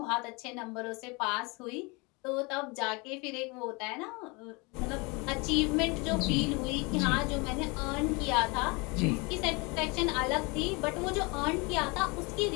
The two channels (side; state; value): right; quieter; 27.9 dB